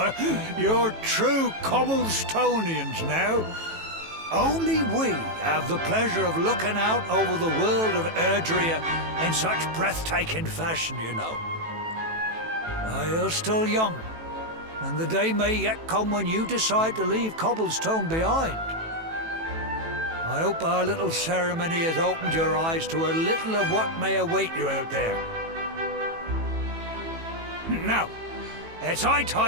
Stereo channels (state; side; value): late; left; 18 ms